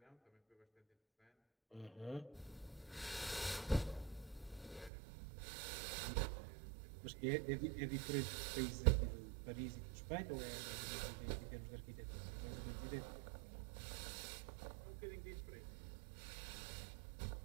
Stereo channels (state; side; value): drops out; left; at 4.9 s